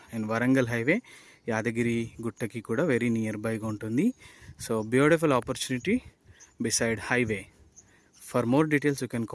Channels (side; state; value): both; identical; correlation 1.00